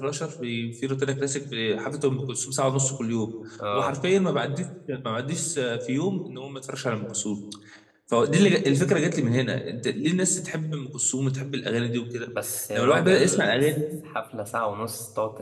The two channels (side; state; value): both; identical; correlation 1.00